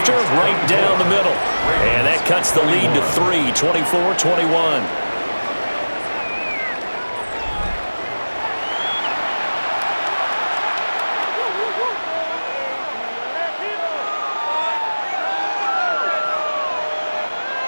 right down the middle. And that cuts the lead to 3, 24-21.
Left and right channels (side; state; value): both; inverted; correlation -1.00